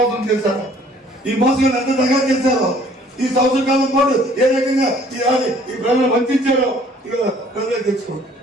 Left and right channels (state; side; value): normal; both; correlation 0.57